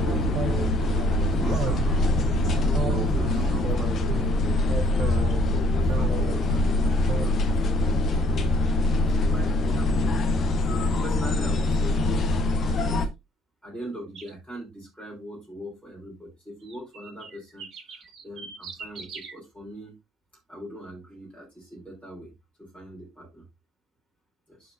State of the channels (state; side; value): normal; both; correlation 0.61